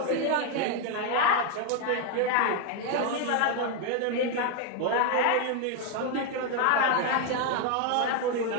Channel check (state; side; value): different; both; correlation 0.01